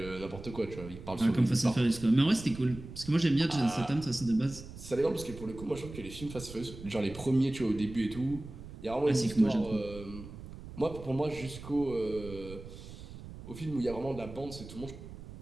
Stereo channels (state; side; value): noise; right; rumble, 13 dB below the sound